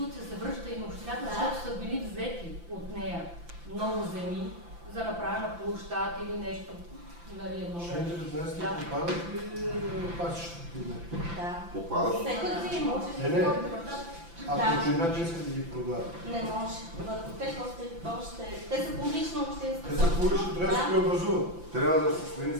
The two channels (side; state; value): left; late; 5.9 ms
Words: се връща и на общината, защото са били взети от нея много земи за направена площад или нещо. Нали, Член 19 попадат ли пасищата? Да. Попадат? Всеки имоти. Ако общината иска да ги продава. Не може. Върху тях още... Те са публична общинска. Те са публични, трябва да се преобразуват. Трябва да се смени